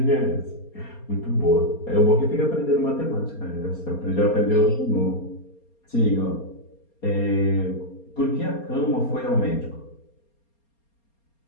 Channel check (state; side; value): late; right; 4.3 ms